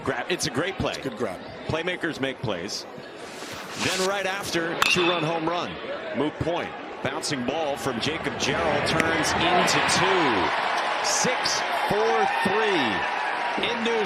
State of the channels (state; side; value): identical; both; correlation 1.00